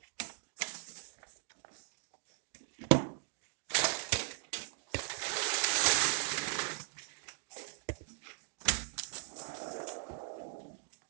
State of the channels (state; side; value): silent; left; 52 dB below the other